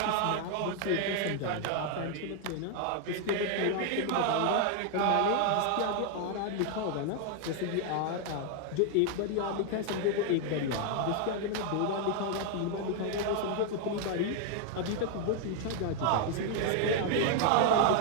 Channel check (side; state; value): both; different; correlation 0.00